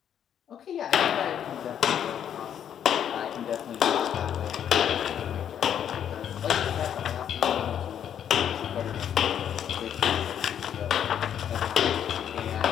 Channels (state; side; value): quieter; right; 9.3 dB